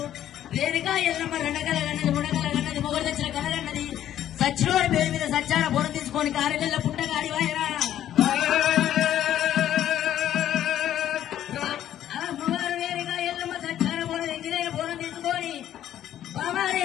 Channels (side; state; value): right; quieter; 11.6 dB